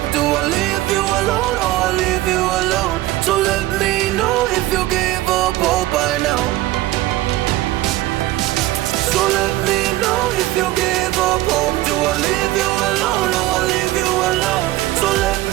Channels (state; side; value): quieter; left; 16.7 dB